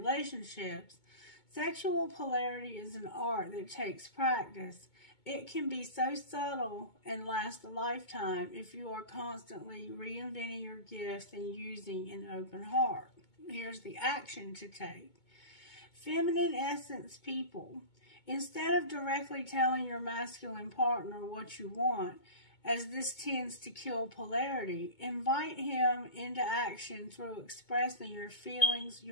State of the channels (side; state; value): right; late; 2.2 ms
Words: Sexual polarity is an art that takes practice. It can be so subtle and last a lifetime if you are constantly reinventing your gifts and using an open heart. Here's the action to take. Feminine essence people. Instead of directly telling your masculine partner what you want, as this tends to kill polarity, invite him into action through expressing your feelings.